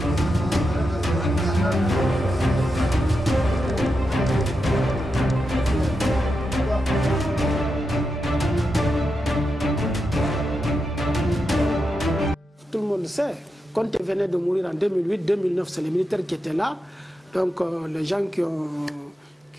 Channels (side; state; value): both; normal; correlation 0.87